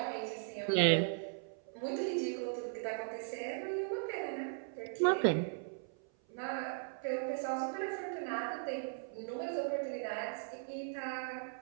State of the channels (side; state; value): left; silent; 52 dB below the other